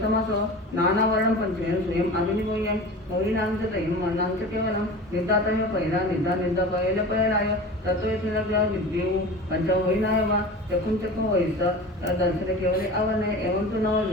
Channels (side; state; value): both; normal; correlation 0.35